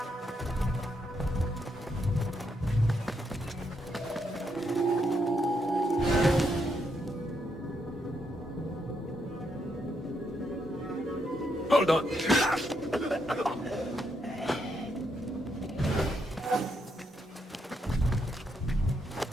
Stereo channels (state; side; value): normal; both; correlation 0.78